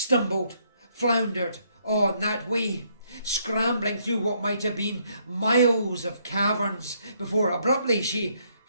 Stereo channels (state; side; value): inverted; both; correlation -0.70